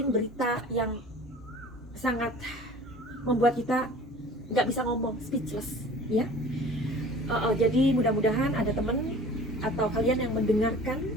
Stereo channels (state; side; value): normal; both; correlation 0.44